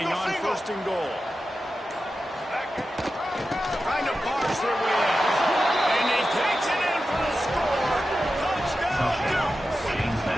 on 1st and goal. Trying to barge their way in. And he takes it in for the score. Touchdown,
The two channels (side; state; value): both; normal; correlation 0.92